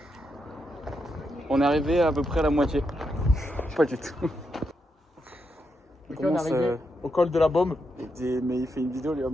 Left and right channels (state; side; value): normal; both; correlation 0.83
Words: On est arrivé à peu près à la moitié. Pas du tout. Ok, on est arrivé au col de la Baume. Mais il fait une vidéo lui en